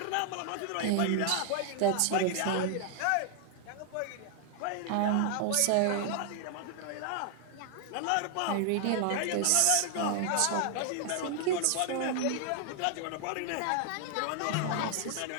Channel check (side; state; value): both; different; correlation 0.00